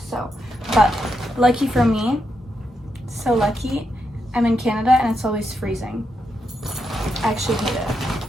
So, but lucky for me, so lucky, I'm in Canada and it's always freezing. I actually hate it.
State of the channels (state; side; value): normal; both; correlation 0.83